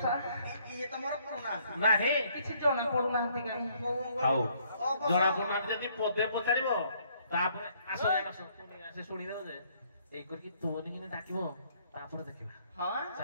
ନାହିଁ କିଛି ଜଣା ପଡୁନାହାନ୍ତି କାହିଁ ହଉ ଜଣା ପଡୁନାହାନ୍ତି ଯଦି ପଦେ ପଚାରିବ ତାପରେ ଆସ ସେ ଶୁଣିଦେବ ଯେ ଏଇ କରିକି ତୋନି କିনে ଡାକିବ ତାପରେ ଦେଖିବା ହଁ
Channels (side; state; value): both; inverted; correlation -0.66